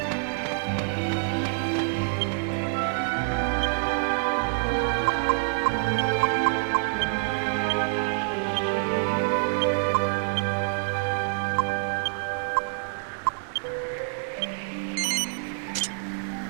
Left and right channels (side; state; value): left; silent; digital silence